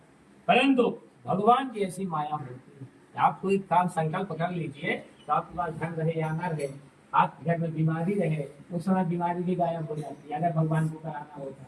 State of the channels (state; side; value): identical; both; correlation 1.00